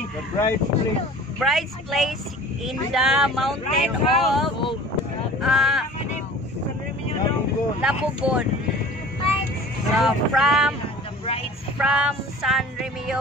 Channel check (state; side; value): normal; both; correlation 0.43